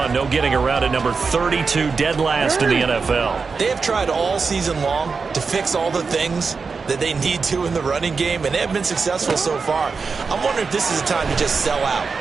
No getting around at number 32, dead last in the NFL. They have tried all season long to fix all the things that they need to in the running game, and they have been successful so far. I'm wondering if this is a time to just sell out.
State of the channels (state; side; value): quieter; left; 4.9 dB